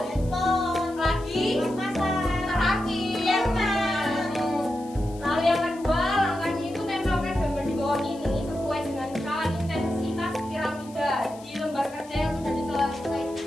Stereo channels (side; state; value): left; noise; hiss, 22 dB below the sound